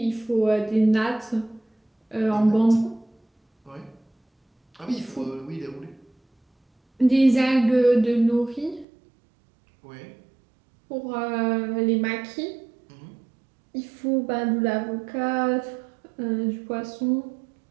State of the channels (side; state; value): left; drops out; at 8.8 s